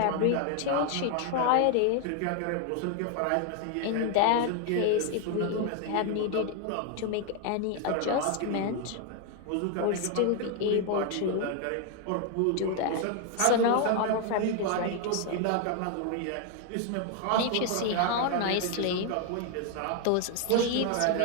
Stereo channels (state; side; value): different; both; correlation 0.01